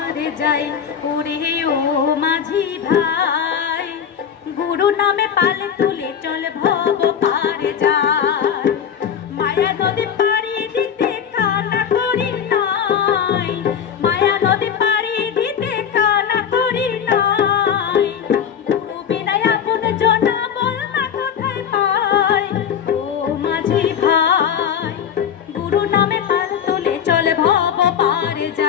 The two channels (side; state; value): right; quieter; 8.1 dB